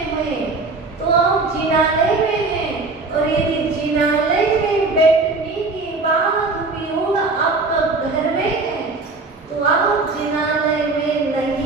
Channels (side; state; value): left; quieter; 3.7 dB